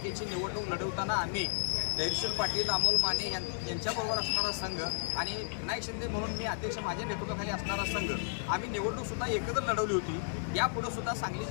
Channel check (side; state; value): right; silent; digital silence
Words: निवडणूक लढवताना आम्ही धैर्यशील पाटील, अमोल माने यांच्याबरोबर असणारा संघ आणि विनायक शिंदे म्हणून मी अध्यक्ष माझ्या नेतृत्वाखाली असणारा संघ आम्ही निवडणूकसुद्धा एकत्र लढवली होती। यापुढे सुद्धा सांगली